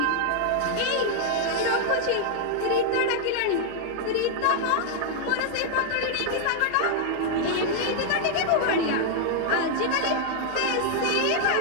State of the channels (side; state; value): both; different; correlation 0.00